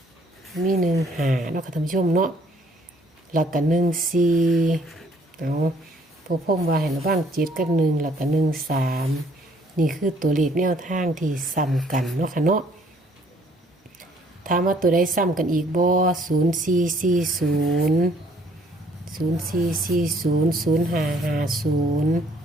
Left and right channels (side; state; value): both; normal; correlation 0.62